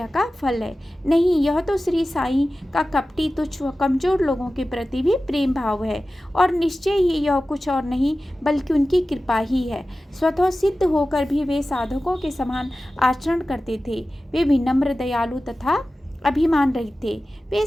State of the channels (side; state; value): both; normal; correlation 0.95